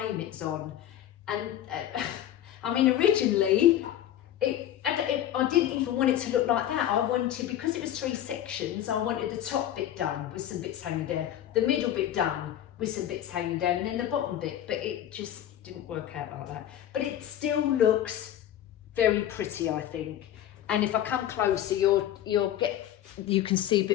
it's on. And I mean, originally, I didn't even want it to look like that. I wanted, because it was 3 sections, I wanted the top bit done with some bits hanging down, the middle bit done with some bits hanging down, and then the bottom bit, but it just didn't work out like that. But it still looks very pretty, I think. And if I come closer, you can see a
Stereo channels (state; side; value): quieter; right; 11.6 dB